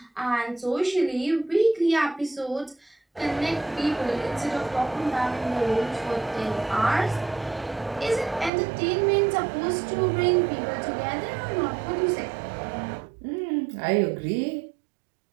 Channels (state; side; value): drops out; left; at 8.5 s